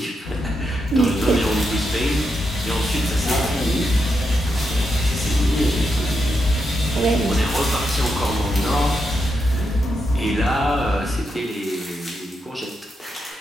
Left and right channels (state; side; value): normal; both; correlation 0.84